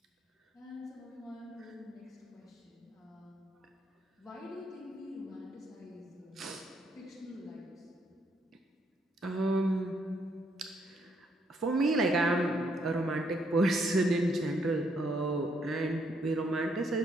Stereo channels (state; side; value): normal; both; correlation 0.73